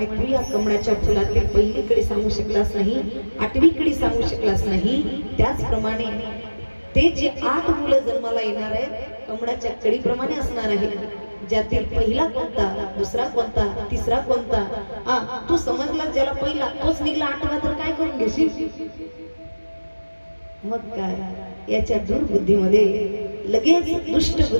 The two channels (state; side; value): inverted; both; correlation -1.00